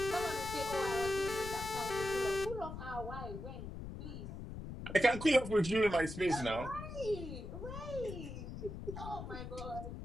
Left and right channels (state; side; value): noise; left; rumble, 8 dB below the sound